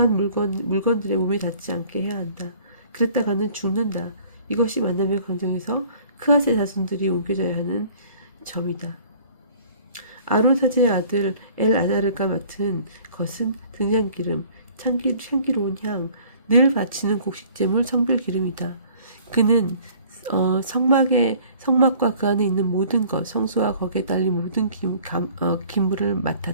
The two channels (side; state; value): both; inverted; correlation -0.53